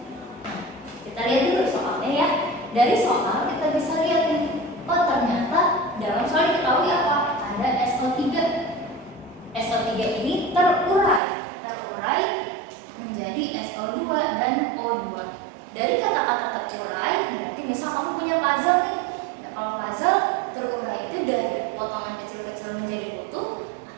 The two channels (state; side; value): drops out; left; at 11.2 s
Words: Kita lihat dulu soalnya ya. Dari soal kita bisa lihat nih, oh ternyata dalam soal diketahui apa? Ada SO3. SO3 ini terurai menjadi SO2 dan O2. Dari kata-kata terurai berarti misal kamu punya puzzle nih. Nah, kalau puzzle terurai itu dari potongan kecil-kecil menjadi utuh